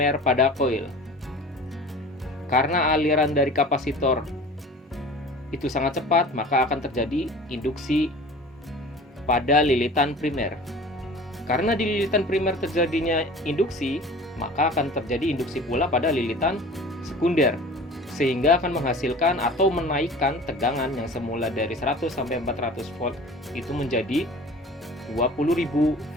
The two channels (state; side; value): normal; both; correlation 0.42